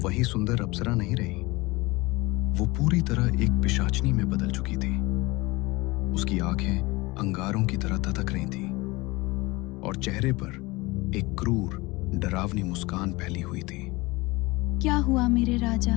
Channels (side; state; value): right; quieter; 22.6 dB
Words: सुंदर अप्सरा नहीं रही। वो पूरी तरह एक पिशाचनी में बदल चुकी थी। उसकी आंखें अंगारों की तरह ततक रही थी और चेहरे पर एक क्रूर, डरावनी मुस्कान फैली हुई थी। क्या हुआ मेरे राजा,